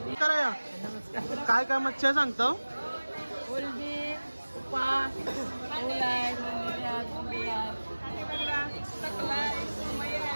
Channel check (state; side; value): inverted; both; correlation -1.00